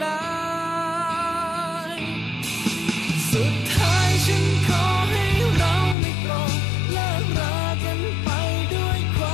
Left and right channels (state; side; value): drops out; right; at 6.0 s